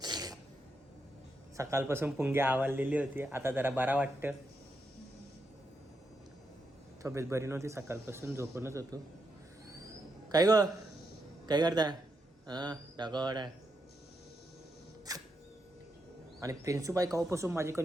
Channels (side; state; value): both; normal; correlation 0.83